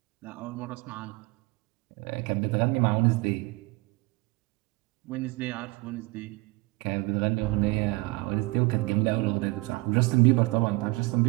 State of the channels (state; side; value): quieter; left; 24.2 dB